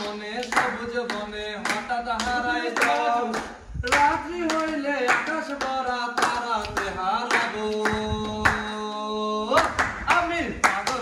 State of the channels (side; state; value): both; identical; correlation 1.00